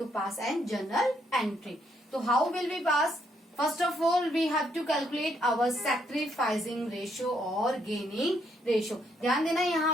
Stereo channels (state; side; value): normal; both; correlation 0.73